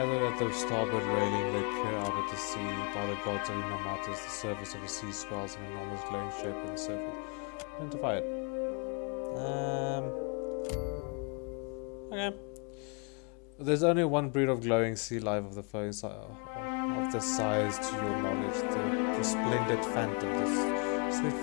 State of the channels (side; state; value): right; quieter; 35.1 dB